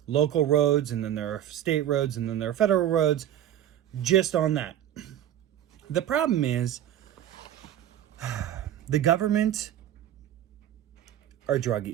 local roads, and then there are state roads, and then there are federal roads, just on that. The problem is, the government are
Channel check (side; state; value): left; quieter; 11.5 dB